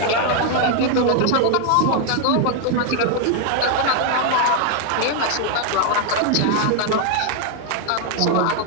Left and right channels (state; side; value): different; both; correlation 0.00